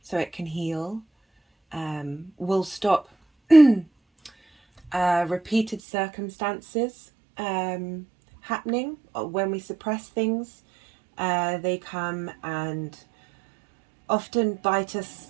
so it can heal will stop repeated circumstances happening. When we suppress things, they come and often bite us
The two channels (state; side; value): drops out; left; at 5.8 s